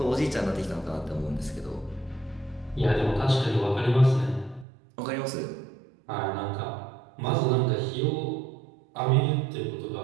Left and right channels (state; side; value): drops out; left; at 4.7 s